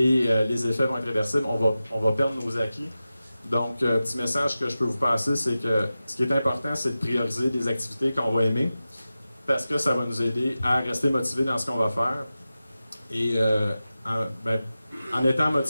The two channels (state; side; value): inverted; both; correlation -0.94